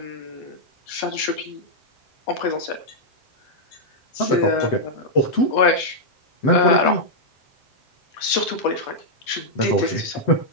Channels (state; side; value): late; right; 8.4 ms